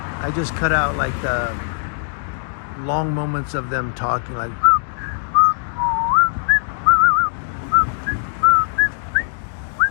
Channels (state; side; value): silent; right; digital silence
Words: just cut out like the long moments of them talking, like